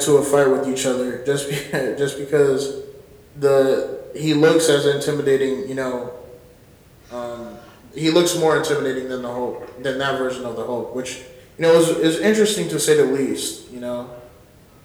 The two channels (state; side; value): identical; both; correlation 1.00